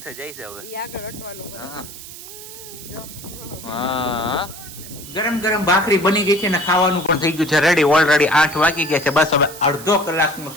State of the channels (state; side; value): noise; right; hiss, 14 dB below the sound